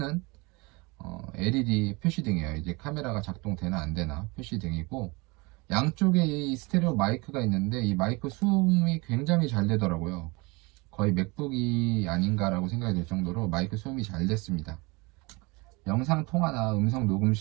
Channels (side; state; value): left; quieter; 26.2 dB